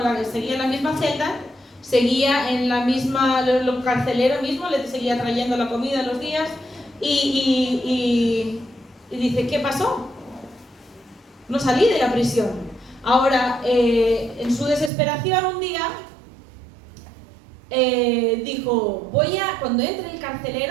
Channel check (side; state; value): left; drops out; at 14.9 s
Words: seguía en la misma celda, seguía en la misma, lo carcelero mismo, le seguía trayendo la comida los días y dice, ¿qué pasó? No salí de la prisión. Ahora, en su desesperación un día, dijo, cuando entre el